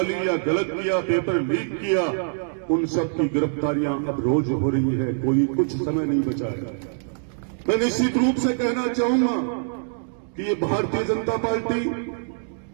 या गलत किया, पेपर लीक किया, उन सब की गिरफ्तारियां अब रोज हो रही है, कोई कुछ समय नहीं बचा है। मैं निश्चित रूप से कहना चाहूंगा कि ये भारतीय जनता पार्टी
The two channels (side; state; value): left; silent; digital silence